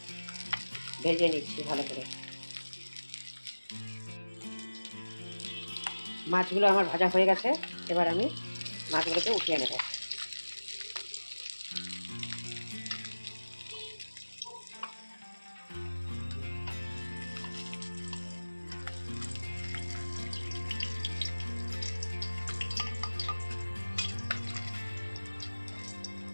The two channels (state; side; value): inverted; both; correlation -1.00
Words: ভেজে নিচ্ছি ভালো করে। মাছগুলো আমার ভাজা হয়ে গেছে, এবার আমি মাছগুলোকে উঠিয়ে নেব।